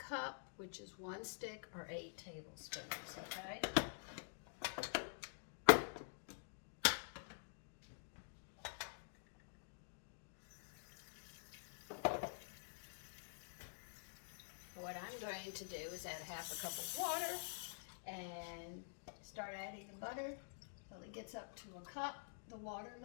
which is 1 stick or 8 tablespoons, okay? What I'm going to do is add half a cup of water and start adding the butter until it gets up to a cup, the water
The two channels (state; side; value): silent; right; digital silence